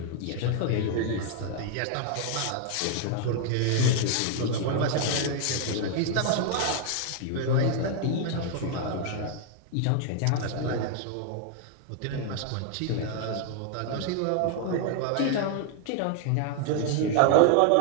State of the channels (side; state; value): both; different; correlation 0.00